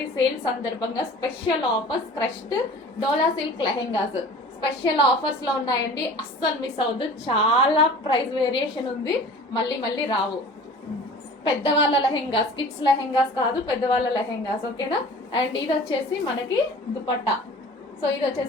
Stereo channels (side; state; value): both; normal; correlation 0.43